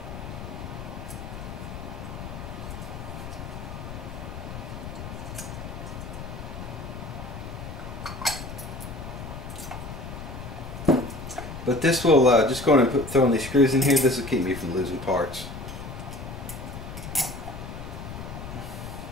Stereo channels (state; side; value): noise; left; rumble, 9 dB below the sound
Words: but this will just go and throwing these screws in here. This will keep me from losing parts.